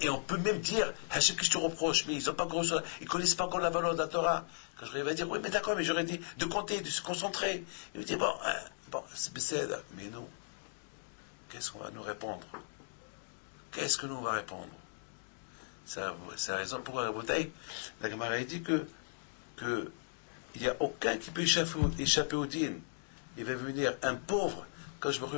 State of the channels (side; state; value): right; silent; digital silence